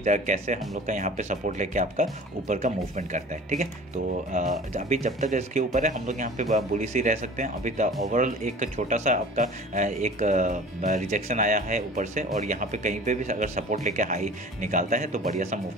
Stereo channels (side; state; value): both; normal; correlation 0.42